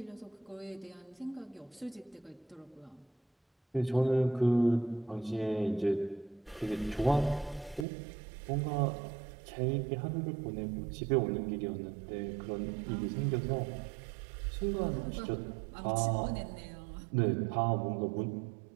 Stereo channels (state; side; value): drops out; left; at 7.9 s